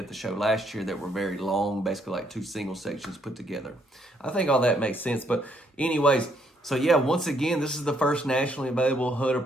the show last year that were very long, basically like two single sections put together. I think all that makes sense. But anyways, so yeah, once again, this is the first nationally available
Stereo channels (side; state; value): both; normal; correlation 0.70